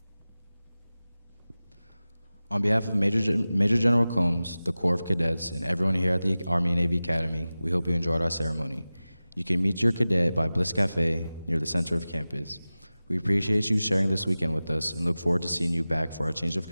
On behalf of Major General Combs, the Corps of Cadets, and everyone here at the Army and Navy Academy, we hope you enjoyed our ceremony. You can meet your cadet by Bliss Cafe near the center of campus. We appreciate you sharing this weekend with us and look forward to seeing you back for our Change of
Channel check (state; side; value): inverted; both; correlation -0.96